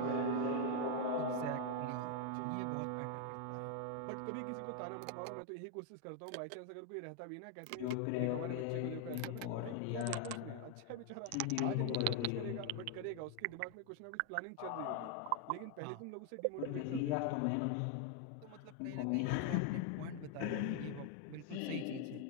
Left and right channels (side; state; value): both; different; correlation 0.01